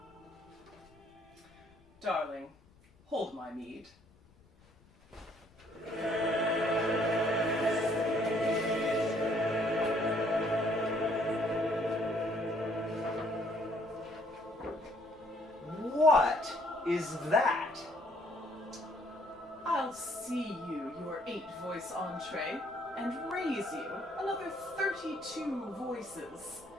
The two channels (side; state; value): left; noise; rumble, 28 dB below the sound